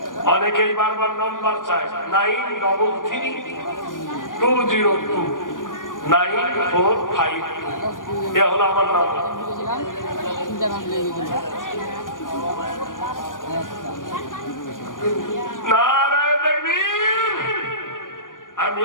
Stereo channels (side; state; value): right; late; 0.89 ms